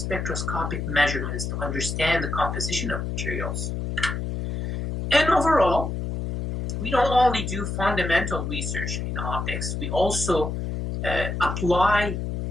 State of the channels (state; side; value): noise; left; hum, 3 dB below the sound